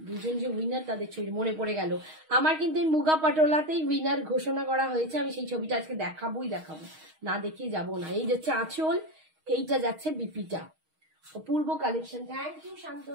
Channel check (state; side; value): late; left; 6.4 ms